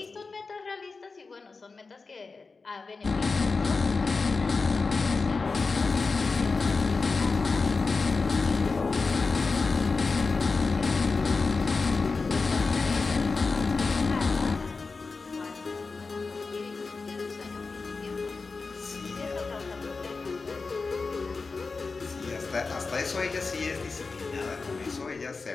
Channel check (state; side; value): quieter; right; 4.2 dB